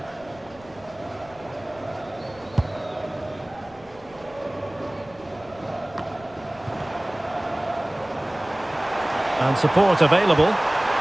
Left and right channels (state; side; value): noise; left; rumble, 24 dB below the sound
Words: And support available.